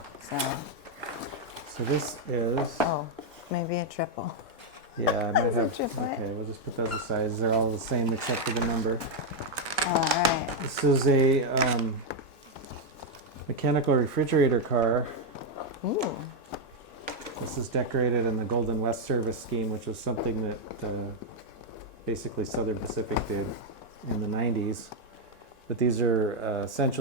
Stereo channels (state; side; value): normal; both; correlation 0.01